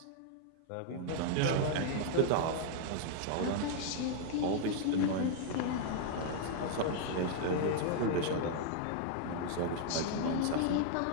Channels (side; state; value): both; different; correlation 0.00